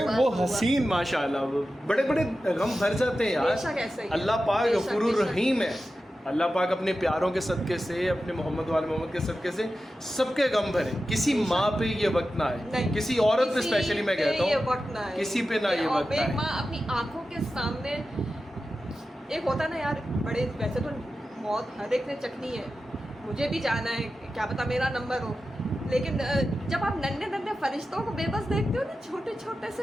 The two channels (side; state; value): both; normal; correlation 0.93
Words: वो हसीन माशाल्लाह, बड़े बड़े गम भर जाते हैं यार। अल्लाह पाक गफूरुर रहीम है। अल्लाह पाक अपने प्यारों के सदक़े से, अपने मोहम्मद वाले मोहम्मद के सदक़े से सबके गम भरे। किसी माँ पे ये वक्त ना आए, किसी औरत पे स्पेशली मैं कहता हूँ, किसी पे ना ये वक्त आए। माँ अपनी आंखों के सामने, एक होता ना यार, बड़े वैसे तो मौत हर एक ने चखनी है, मुझे भी जाना है, क्या पता मेरा नंबर हो, लेकिन जब आप नन्हे फरिश्तों को बेबस देखते हो ना, छोटे से,